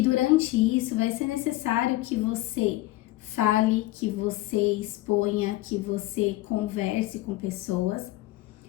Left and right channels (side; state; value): right; quieter; 17.8 dB